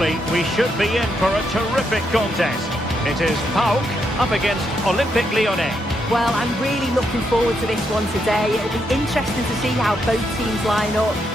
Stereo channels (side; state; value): both; normal; correlation 0.79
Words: we should be in for a terrific contest. It is PAOK up against Olympique Lyonnais. Well, I'm really looking forward to this one today. It'll be interesting to see how both teams line up.